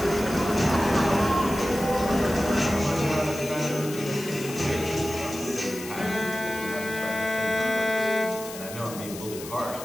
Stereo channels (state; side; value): noise; left; hiss, 12 dB below the sound